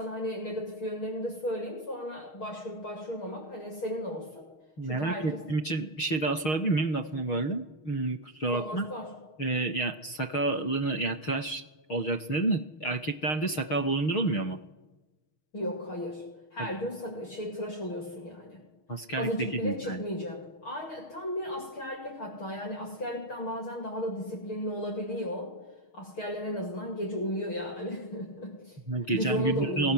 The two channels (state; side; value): late; right; 6.4 ms